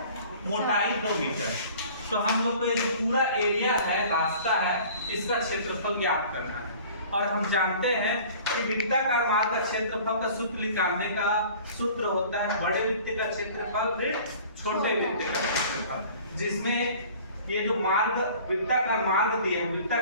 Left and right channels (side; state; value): both; inverted; correlation -0.47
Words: मोटाई 2 मीटर। तो हम लोग को ये जो पूरा एरिया है, रास्ता है, इसका क्षेत्रफल ज्ञात करना है। और हम जानते हैं कि वृत्ताकार मार्ग का क्षेत्रफल का सूत्र निकालने का सूत्र होता है बड़े वृत्त का क्षेत्रफल ऋण छोटे वृत्त का क्षेत्रफल, जिसमें ये जो मार्ग वृत्ताकार मार्ग दिया है,